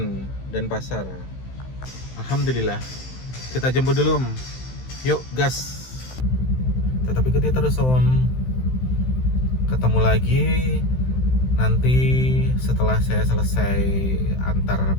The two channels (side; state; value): right; late; 16 ms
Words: Denpasar. Alhamdulillah. Kita jemput dulu, Om. Yuk, gas. Tetap ikuti terus, Om. Ketemu lagi nanti setelah saya selesai antar